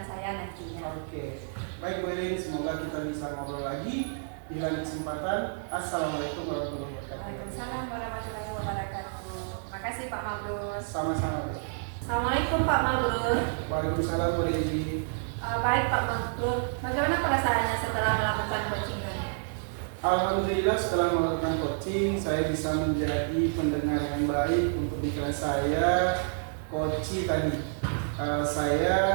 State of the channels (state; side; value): silent; left; 56 dB below the other